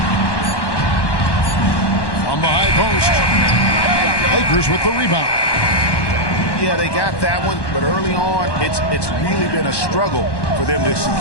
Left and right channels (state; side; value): late; right; 1.1 ms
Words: From the high post. Lakers with the rebound. Yeah, they got that one, but early on, it's really been a struggle for them to